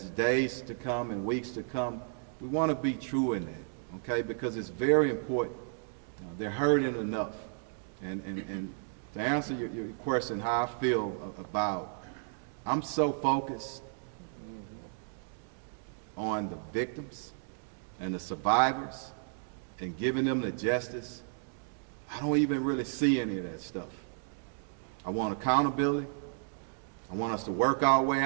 days to come and weeks to come, we want to be true in that, okay? Because it's very important. They're hurting enough. And to answer your question, how I feel about, I'm so focused on the victims and the survivors and giving them the justice, I don't even really see any of that stuff. I want accountability. I want us to work our way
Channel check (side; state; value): left; silent; digital silence